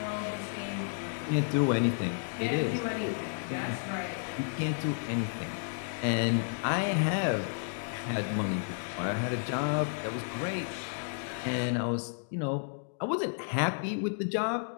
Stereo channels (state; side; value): silent; right; digital silence